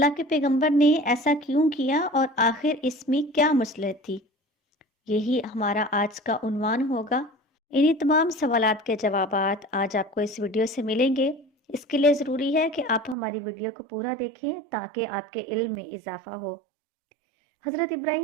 के पैगंबर ने ऐसा क्यों किया और आखिर इसमें क्या मसलहत थी। यही हमारा आज का उन्वान होगा। इन्हीं तमाम सवालात के जवाबात आज आपको इस वीडियो से मिलेंगे। इसके लिए ज़रूरी है कि आप हमारी वीडियो को पूरा देखें ताकि आपके इल्म में इजाफ़ा हो। हज़रत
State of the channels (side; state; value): left; drops out; at 13.2 s